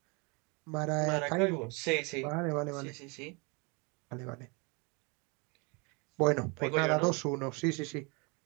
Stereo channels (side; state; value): left; quieter; 30.7 dB